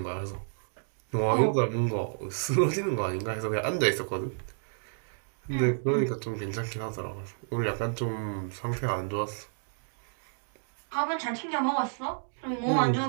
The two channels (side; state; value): left; silent; digital silence